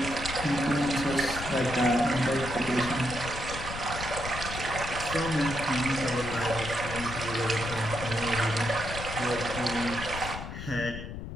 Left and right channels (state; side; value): noise; left; rumble, 8 dB below the sound